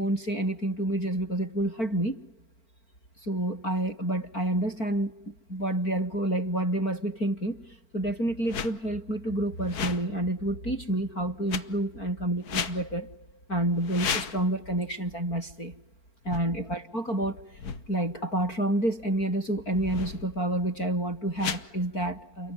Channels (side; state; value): right; late; 4.5 ms